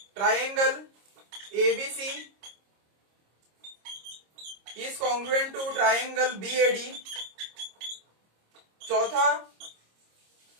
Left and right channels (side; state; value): left; late; 26 ms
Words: triangle ABC is congruent to triangle BAD, चौथा